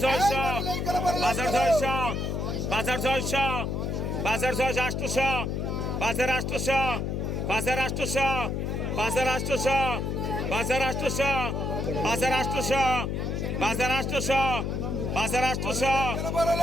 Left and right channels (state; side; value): noise; left; hum, 1 dB below the sound